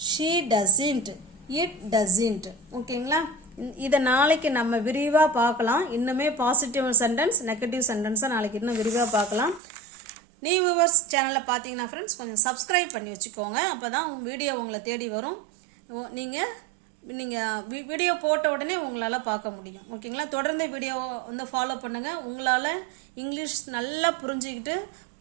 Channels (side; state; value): left; drops out; at 9.6 s